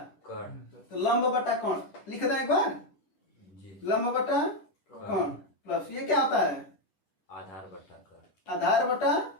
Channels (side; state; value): right; late; 10 ms